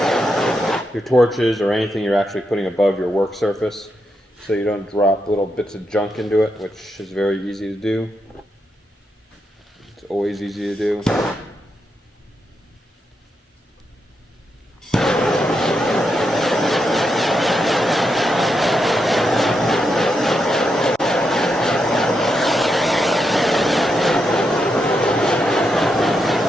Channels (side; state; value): both; normal; correlation 0.83